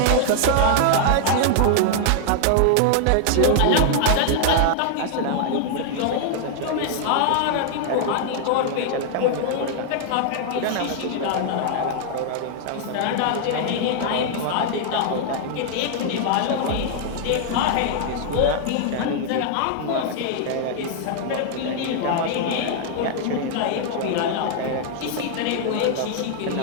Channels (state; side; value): different; both; correlation 0.00